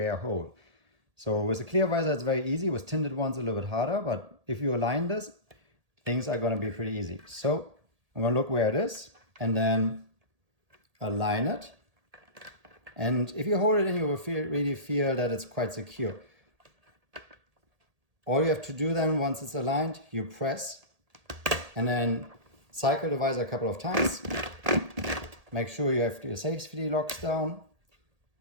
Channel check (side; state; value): left; late; 1.8 ms